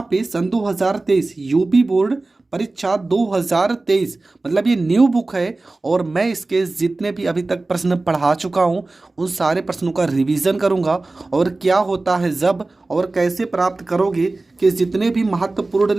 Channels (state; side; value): quieter; left; 3.2 dB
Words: पे सन 2023 यूपी बोर्ड परीक्षा 2023 मतलब ये न्यू बुक है। और मैं इसके जितने भी अभी तक प्रश्न पढ़ा चुका हूँ उन सारे प्रश्नों का रिवीजन करूँगा, और क्या होता है जब और कैसे प्राप्त करोगे कि जितने भी महत्वपूर्ण